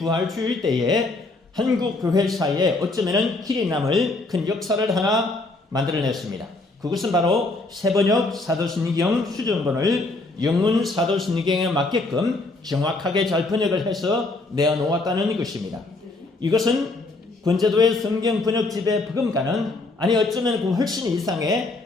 때에 한국 교회사에 어쩌면은 길이 남을 큰 역사를 하나 만들어냈습니다. 그것은 바로 새번역 사도신경 수정본을 영문 사도신경에 맞게끔 정확하게 잘 번역을 해서 내어놓았다는 것입니다. 이것은 권제도의 성경 번역집의 버금가는 아니 어쩌면 그 훨씬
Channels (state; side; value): quieter; right; 3.1 dB